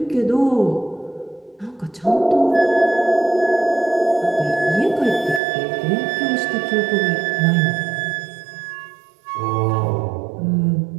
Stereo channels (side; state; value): left; drops out; at 5.4 s